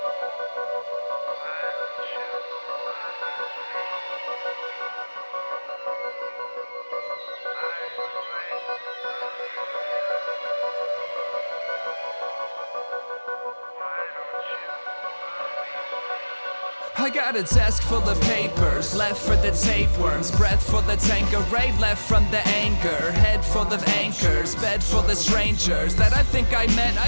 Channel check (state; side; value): inverted; both; correlation -1.00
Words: I got a desk full of papers, left for the tapeworms, breath full of Tanqueray, left from the anger, head full of anchors, bed full of strangers that I think I met,